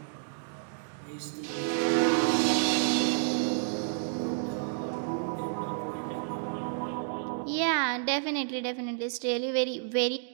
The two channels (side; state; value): left; silent; digital silence